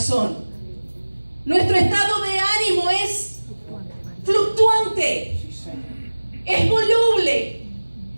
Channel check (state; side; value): inverted; both; correlation -1.00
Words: Nuestro estado de ánimo es fluctuante, es voluble.